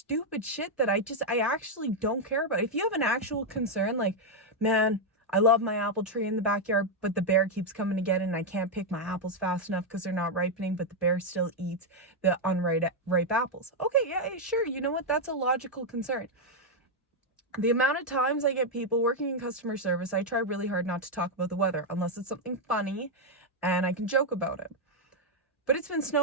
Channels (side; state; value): both; normal; correlation 0.00